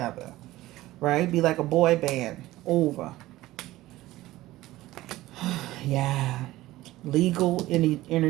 right? Be like a boy band over. Yeah, legal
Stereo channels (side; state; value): left; quieter; 16.9 dB